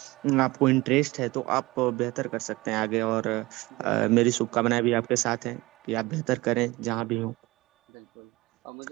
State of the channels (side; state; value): left; quieter; 21.0 dB